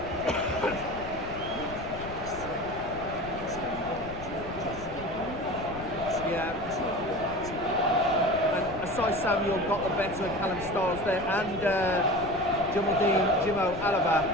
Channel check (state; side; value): noise; left; rumble, 13 dB below the sound